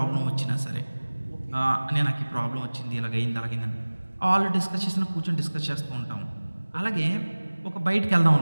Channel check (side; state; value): both; inverted; correlation -1.00